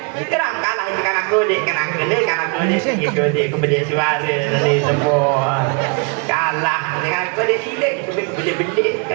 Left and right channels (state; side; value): quieter; left; 35.3 dB